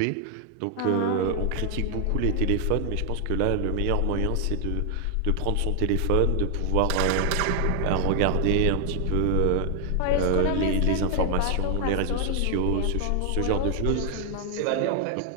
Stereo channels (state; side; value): different; both; correlation 0.00